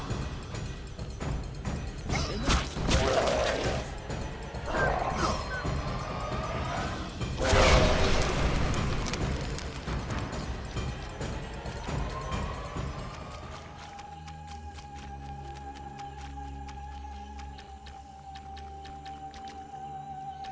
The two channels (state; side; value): identical; both; correlation 1.00